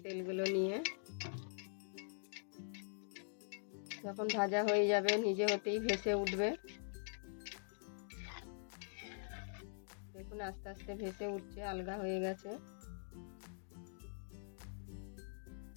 তেলগুলো নিয়ে। যখন ভাজা হয়ে যাবে নিজে হতেই ভেসে উঠবে। দেখুন আস্তে আস্তে ভেসে উঠছে, আলগা হয়ে গেছে।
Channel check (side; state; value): right; silent; digital silence